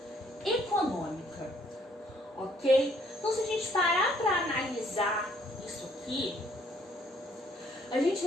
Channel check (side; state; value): both; normal; correlation 0.65